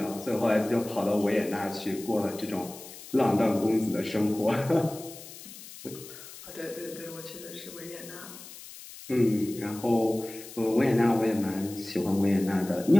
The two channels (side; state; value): left; noise; hiss, 16 dB below the sound